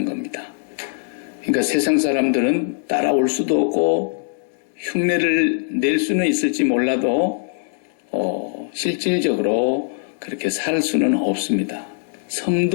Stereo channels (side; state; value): right; silent; digital silence